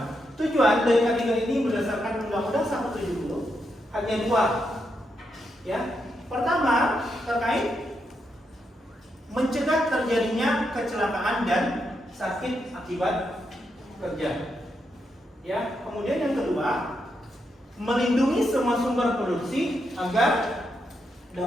Tujuan dari ketiga ini berdasarkan Undang-Undang 170 hanya dua. Ya. Pertama, terkait mencegah terjadinya kecelakaan dan sakit akibat kerja. Ya, kemudian yang kedua, melindungi semua sumber produksi agar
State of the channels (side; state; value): both; normal; correlation 0.82